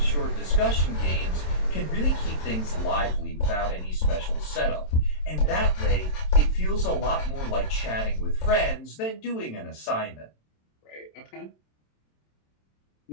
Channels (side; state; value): right; late; 27 ms